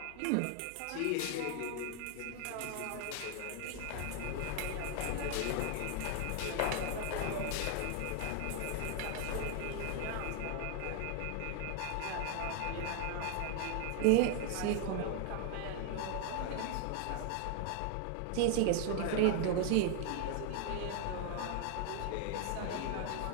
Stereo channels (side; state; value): both; different; correlation 0.00